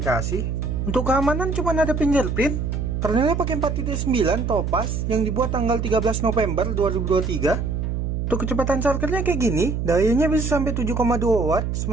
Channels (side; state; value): right; noise; hum, 2 dB below the sound